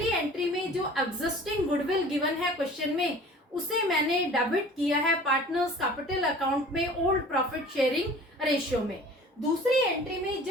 एंट्री में जो एग्जिस्टिंग गुडविल गिवन है क्वेश्चन में, उसे मैंने डेबिट किया है पार्टनर्स कैपिटल अकाउंट में ओल्ड प्रॉफिट शेयरिंग रेशियो में। दूसरी एंट्री में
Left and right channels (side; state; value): both; normal; correlation 0.45